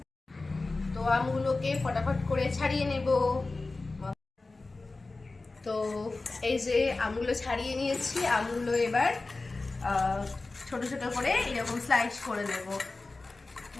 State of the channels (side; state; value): right; quieter; 3.5 dB